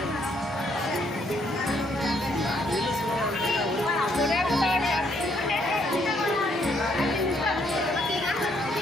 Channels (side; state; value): both; normal; correlation 0.70